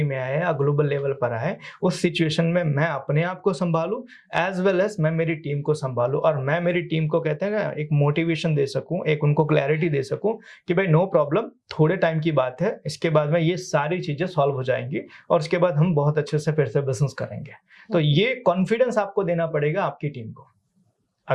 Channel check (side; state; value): both; identical; correlation 1.00